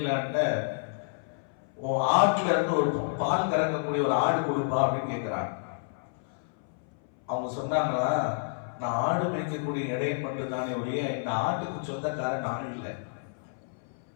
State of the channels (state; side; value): silent; right; 58 dB below the other